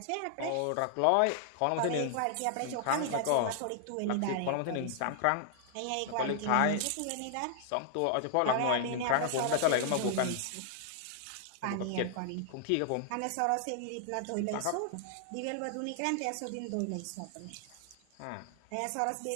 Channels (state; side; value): different; both; correlation 0.00